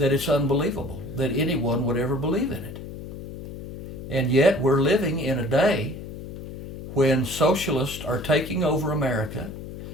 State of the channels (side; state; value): left; noise; hum, 11 dB below the sound